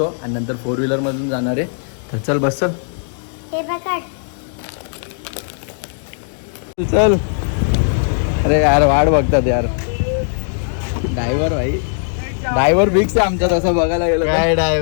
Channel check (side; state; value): right; silent; digital silence